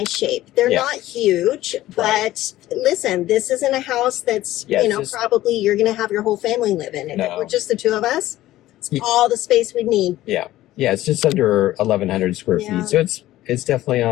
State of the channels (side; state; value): right; quieter; 15.2 dB